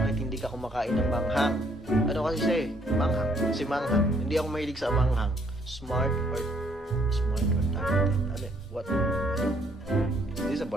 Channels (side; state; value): both; normal; correlation 0.67